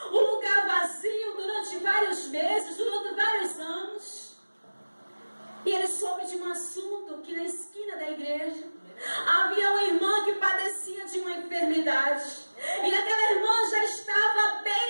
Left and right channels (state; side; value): inverted; both; correlation -1.00